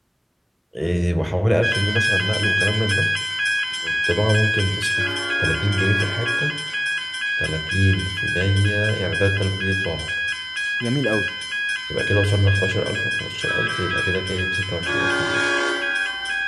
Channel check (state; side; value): identical; both; correlation 1.00